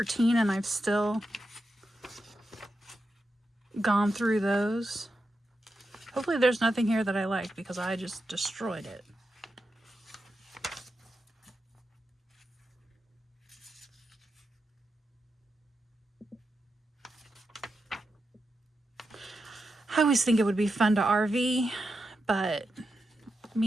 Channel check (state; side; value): normal; both; correlation 0.88